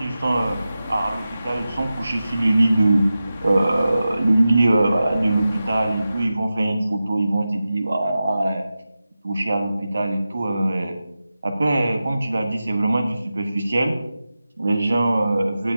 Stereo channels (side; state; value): both; inverted; correlation -0.94